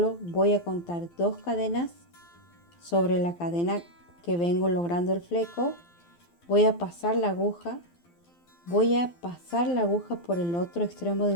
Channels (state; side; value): late; right; 12 ms